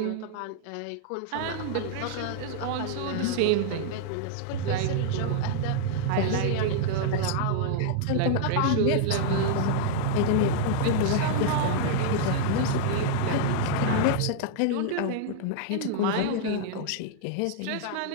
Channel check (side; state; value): both; different; correlation -0.01